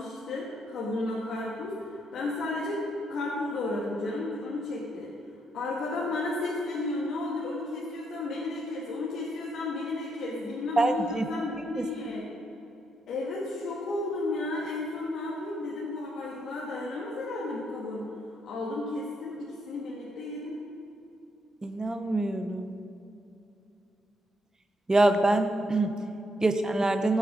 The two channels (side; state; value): both; normal; correlation 0.76